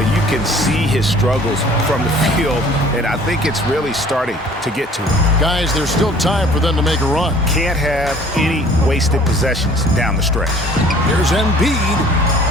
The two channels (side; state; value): both; normal; correlation 0.52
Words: you can see his struggles from the field, and I think it's really starting to get to him. Guys, there's still time for them to make a run. Can't have any wasted possessions down the stretch. Here's